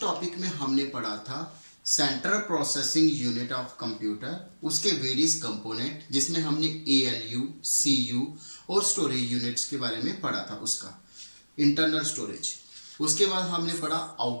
टॉपिक में हमने पढ़ा था central processing unit of computer, उसके वेरियस कंपोनेंट जिसमें हमने एएलयू, सीयू और स्टोरेज यूनिट्स के बारे में पढ़ा था, उसका इंटरनल स्टोरेज। उसके बाद हमने पढ़ा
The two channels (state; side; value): inverted; both; correlation -1.00